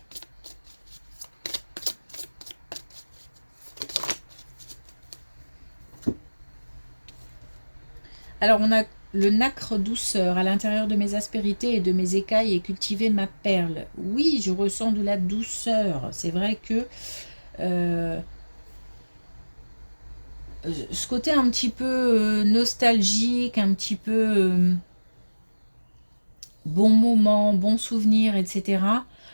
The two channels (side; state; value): both; inverted; correlation -1.00